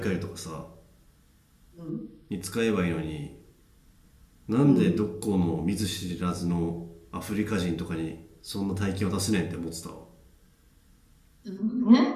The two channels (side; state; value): both; identical; correlation 1.00